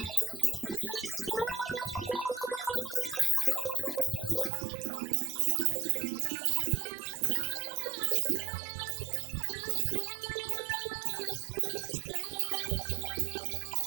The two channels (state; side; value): drops out; left; at 4.5 s